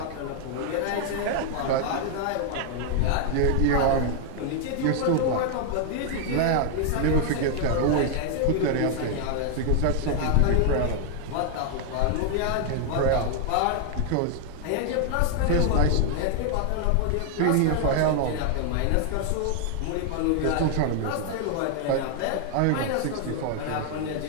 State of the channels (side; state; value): both; different; correlation 0.00